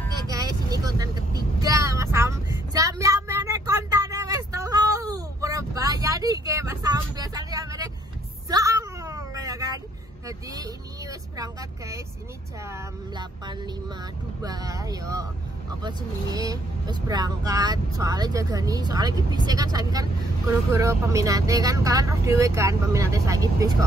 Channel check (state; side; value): normal; both; correlation 0.69